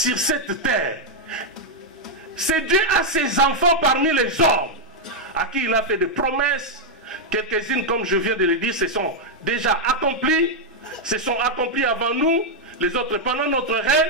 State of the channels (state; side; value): normal; both; correlation -0.02